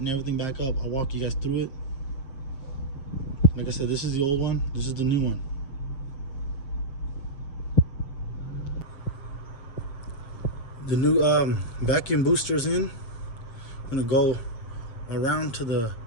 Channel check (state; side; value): late; right; 7.5 ms